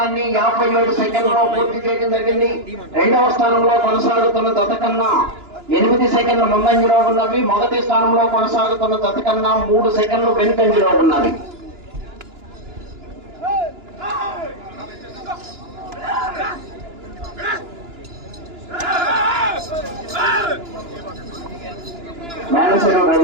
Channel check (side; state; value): left; late; 2.9 ms